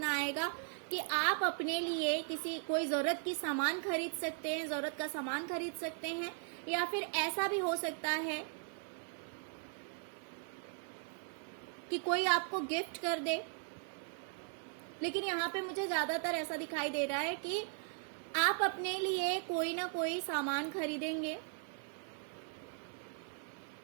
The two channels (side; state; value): left; silent; 52 dB below the other